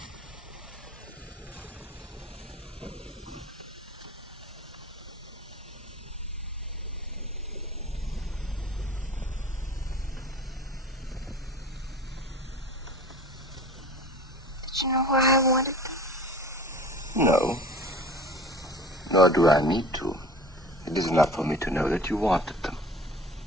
Did you know why I wanted them? No. Nor do I need to. It is enough for me to know that you wanted them.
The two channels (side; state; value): both; normal; correlation 0.41